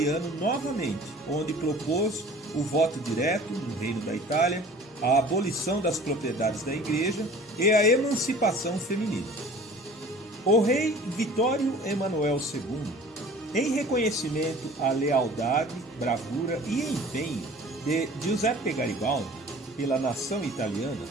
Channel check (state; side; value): normal; both; correlation 0.46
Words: novamente, onde propôs o voto direto no Reino da Itália, a abolição das propriedades da Igreja e a emancipação feminina. O rei Vittorio Emanuel II, em reconhecimento à lealdade, bravura e empenho de Giuseppe Garibaldi pela nação italiana,